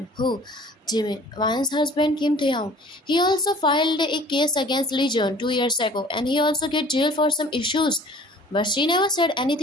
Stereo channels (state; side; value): normal; both; correlation 0.49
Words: who? Jimmy, Ryan's husband Kim Taeyong. He also filed a case against Legion 2 years ago and he also get jailed for some issues. But she never said